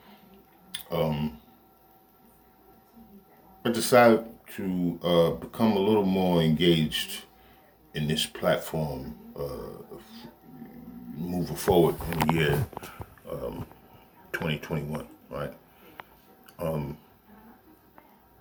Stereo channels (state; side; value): identical; both; correlation 1.00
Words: I decided to become a little more engaged in this platform moving forward in the year 2021, right?